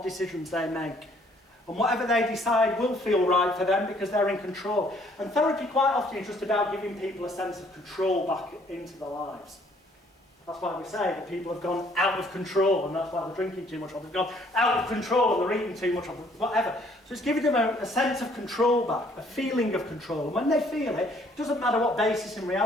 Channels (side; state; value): both; normal; correlation 0.62